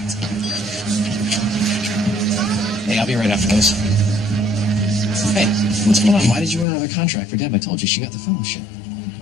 Hey, I'll be right after this. Hey, what's going on? Why did you want another contract for Deb? I told you she got the fellowship.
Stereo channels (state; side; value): drops out; right; at 6.7 s